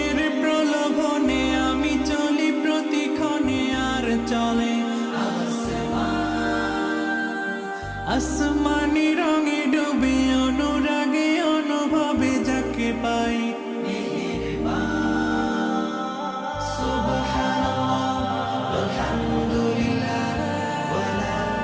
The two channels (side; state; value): both; identical; correlation 1.00